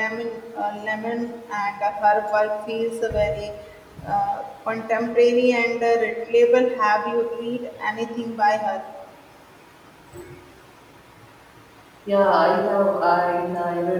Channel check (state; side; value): identical; both; correlation 1.00